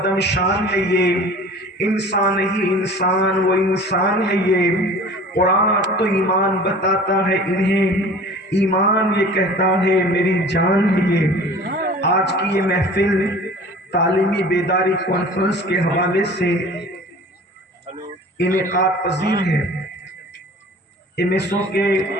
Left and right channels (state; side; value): normal; both; correlation 0.43